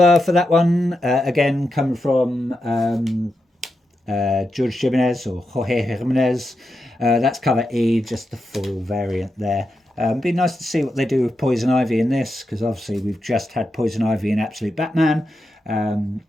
for that one. Again, coming from George Jimenez, or Jorge Jimenez. That's cover E, just the full variant there. Be nice to see what they do with Poison Ivy in this, because obviously we've just had Poison Ivy in Absolute Batman.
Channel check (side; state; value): both; normal; correlation 0.87